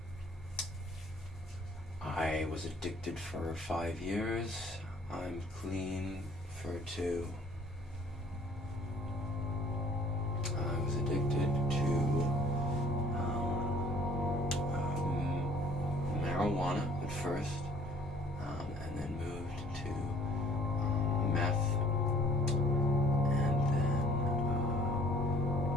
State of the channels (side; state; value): both; normal; correlation 0.56